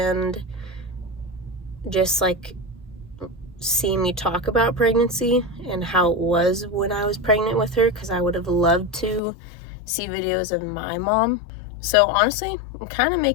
just like see me talk about pregnancy and how it was when I was pregnant with her, because I would have loved to see videos of my mom. So honestly, I'm kind of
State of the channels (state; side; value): drops out; right; at 9.2 s